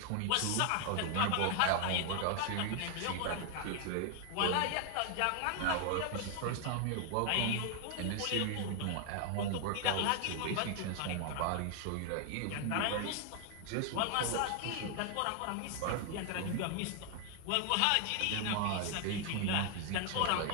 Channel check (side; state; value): both; different; correlation 0.00